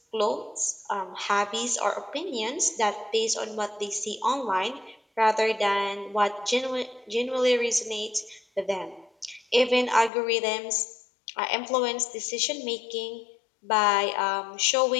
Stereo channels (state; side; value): drops out; right; at 10.1 s